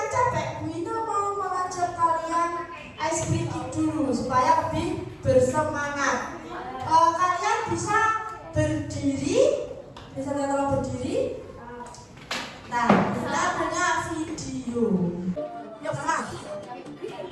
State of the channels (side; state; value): both; identical; correlation 1.00